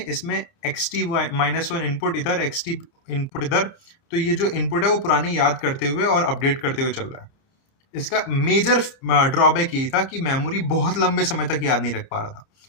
इसमें x T minus one input इधर, एक्स टी इनपुट इधर। तो ये जो इनपुट है वो पुरानी याद करते हुए और अपडेट करते हुए चल रहा है। इसका मेजर ड्रॉबैक यही था कि मेमोरी बहुत लंबे समय तक याद नहीं रख पा रहा था।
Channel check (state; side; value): late; right; 30 ms